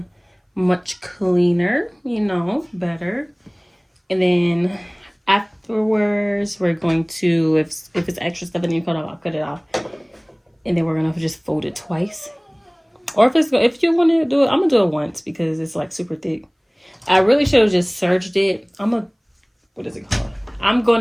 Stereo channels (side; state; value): both; identical; correlation 1.00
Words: much cleaner, you know, better. And then afterwards, we're going to, if it's extra stuff and you cut off, I'll cut it off. And then we're going to just fold it twice. Or if you want to do it, I'm going to do it once because it's like super thick. I really should have just serged it. What is it called? I'm going